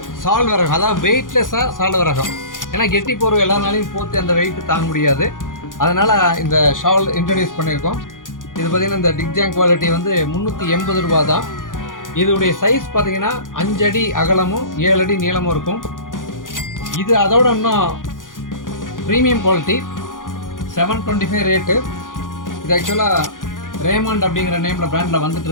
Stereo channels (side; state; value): right; late; 0.89 ms